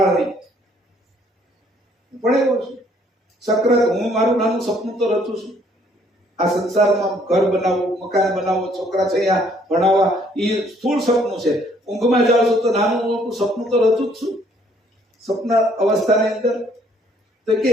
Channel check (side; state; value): both; normal; correlation 0.64